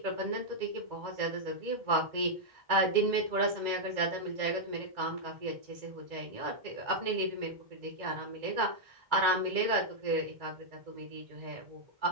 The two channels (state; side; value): late; left; 2.0 ms